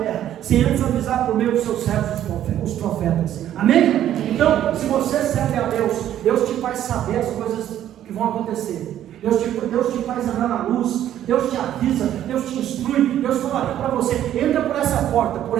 sem antes avisar por meio dos seus servos, os profetas. Amém? Então, se você serve a Deus, Deus te faz saber as coisas que vão acontecer. Deus te faz andar na luz, Deus te avisa, Deus te instrui, Deus fala para você, entra por essa porta, por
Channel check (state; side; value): quieter; left; 11.5 dB